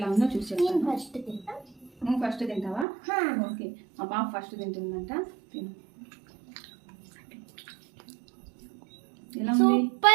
ఉందో చూసి చెప్తాను. నువ్వు ఫస్ట్ తింటావా? ఓకే, మా పాప ఫస్ట్ తింటుందంట. తిను. ఎలా ఉంది?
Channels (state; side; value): drops out; left; at 2.9 s